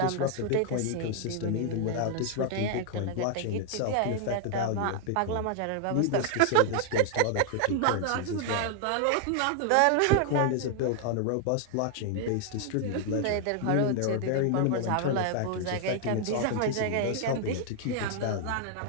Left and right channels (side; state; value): both; different; correlation 0.00